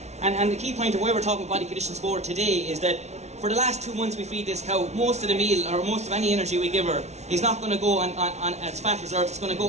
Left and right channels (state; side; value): late; left; 0.32 ms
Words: And the key point of why we're talking about body condition score today is that for the last 2 months we feed this cow, most of the meal or most of any energy we give her is not going to go on as fat reserves, it's going to